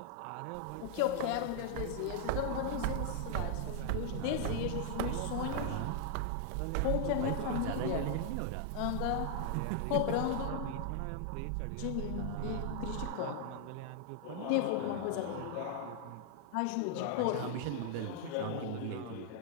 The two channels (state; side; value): different; both; correlation -0.01